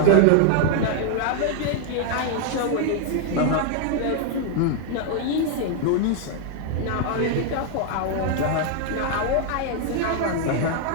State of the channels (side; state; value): both; different; correlation 0.00